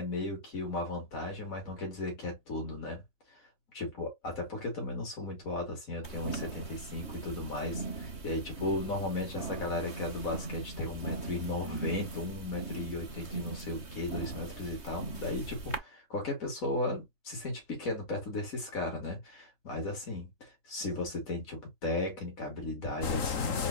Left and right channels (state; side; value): late; right; 3.2 ms